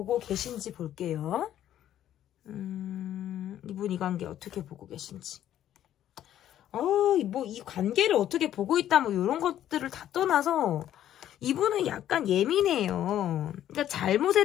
계신지 볼게요. 이분 이 관계 어떻게 보고 계신지. 뭐 이 관계를 어떻게 보고 있다 뭐 이런 것들을 다 떠나서 이분은 약간 예민해요. 그러니까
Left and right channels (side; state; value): right; quieter; 11.6 dB